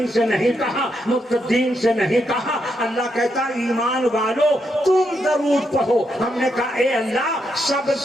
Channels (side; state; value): both; normal; correlation 0.80